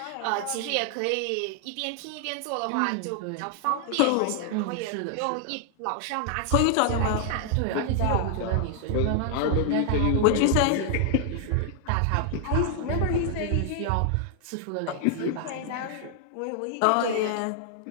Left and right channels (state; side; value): different; both; correlation 0.00